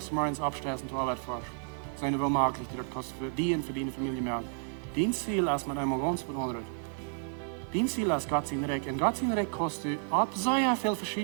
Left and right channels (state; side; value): silent; left; 55 dB below the other